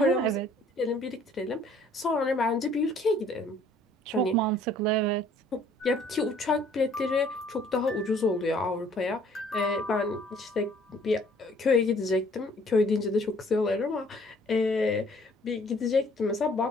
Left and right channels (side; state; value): both; normal; correlation 0.58